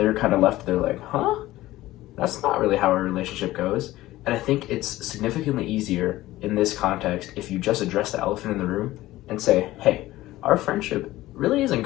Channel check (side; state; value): right; quieter; 16.6 dB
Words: kind of left there like, huh? That's not really how our relationship goes. And I think it's significantly easier in this context if you just address the elephant in the room and say, hey, our friendship really isn't